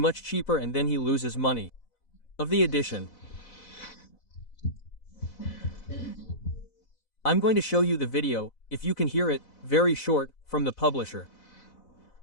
cheaper and then he loses money. Of the edition. I'm going to show you the video, if you can hear it, very short, from the publisher.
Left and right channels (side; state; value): right; late; 4.0 ms